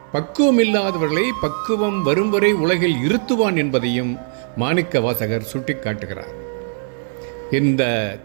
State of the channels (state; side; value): silent; left; 61 dB below the other